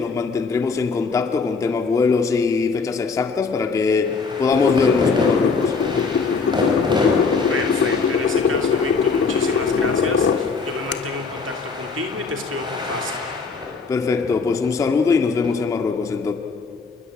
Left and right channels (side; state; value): right; quieter; 4.7 dB